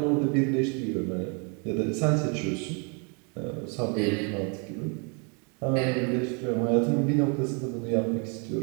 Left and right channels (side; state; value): left; quieter; 35.8 dB